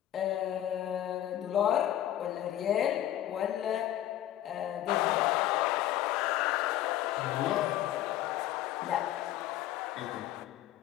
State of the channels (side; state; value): right; quieter; 12.7 dB